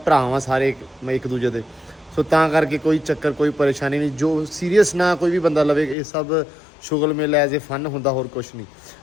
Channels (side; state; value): right; drops out; at 6.0 s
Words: ਸਾਰੇ ਇੱਕ ਦੂਜੇ ਦੇ। ਸੋ ਤਾਂ ਕਰਕੇ ਕੋਈ ਚੱਕਰ ਕੋਈ ਪਰੇਸ਼ਾਨੀ ਨਹੀਂ। ਜੋ ਸੀਰੀਅਸ ਨਾ ਕੋਈ ਵੀ ਬੰਦਾ ਲਵੇ, ਇਹ ਸਭ ਸ਼ੁਗਰ ਮੇਲਾ ਐਜ਼ ਏ ਫਨ ਹੁੰਦਾ, ਹੋਰ ਕੁਛ ਨਹੀਂ।